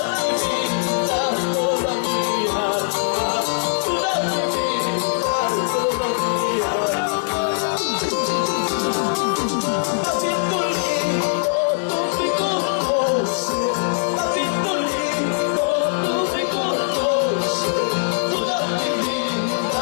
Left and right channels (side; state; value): right; silent; digital silence